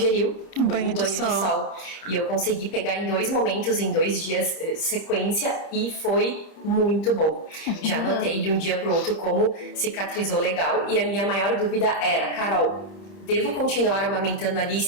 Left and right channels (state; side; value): late; right; 30 ms